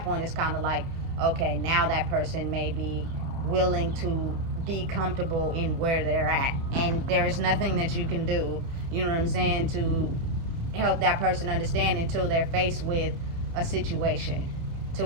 point, it's kind of like, okay, now that person may be willing to be comfortable in where they're at, and there's nothing that you can do, to help that person understand until they're faced with a situation to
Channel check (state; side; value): late; left; 30 ms